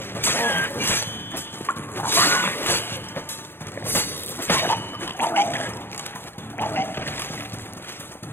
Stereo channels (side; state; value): right; late; 0.11 ms